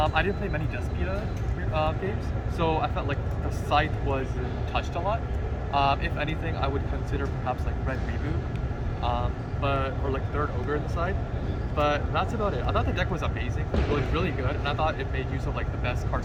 didn't play many Despia games, so I felt like the Scythe was touched a lot. If anything, I would consider perhaps like Red Reboot, or like Third Ogre in the side. But that's about it. I thought the deck was amazing. It was really good, and I thought it made use of like the best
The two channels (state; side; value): identical; both; correlation 1.00